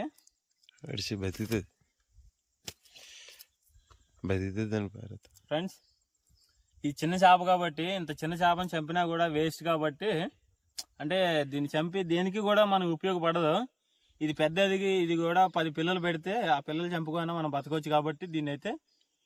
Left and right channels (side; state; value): both; identical; correlation 1.00